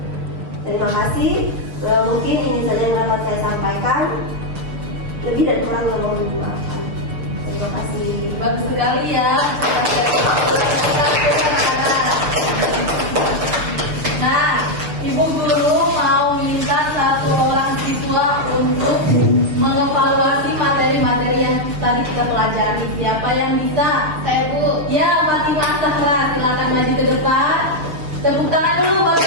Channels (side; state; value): left; late; 6.7 ms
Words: Terima kasih. Mungkin ini saja yang dapat saya sampaikan. Lebih dan kurang yang mohon dimaafkan. Terima kasih. Bagus sekali ya. Nah, Ibu Guru mau minta satu orang siswa untuk mengevaluasi materi-materi yang tadi kita pelajari. Siapa yang bisa? saya Bu. Ya, Fatimah Zahra, silakan maju ke depan. Tepuk tangan dulu buat